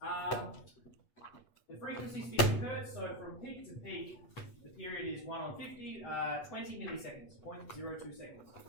The frequency is 50 Hertz, so from peak to peak, the period is 1/50, 20 milliseconds, 0.02 seconds.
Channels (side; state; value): right; late; 8.4 ms